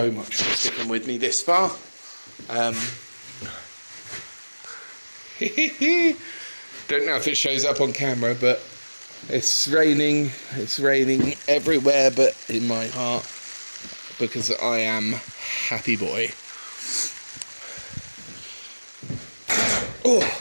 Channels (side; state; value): both; inverted; correlation -1.00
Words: much for sticking with me this far. Don't know if it shows up on camera, but it's raining everywhere but in my heart, because I am happy boy.